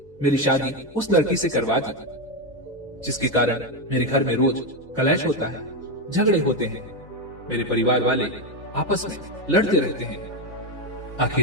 मेरी शादी उस लड़की से करवा दी, जिसके कारण मेरे घर में रोज कलेश होता है, झगड़े होते हैं। मेरे परिवार वाले आपस में लड़ते रहते हैं।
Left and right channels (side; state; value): both; normal; correlation 0.09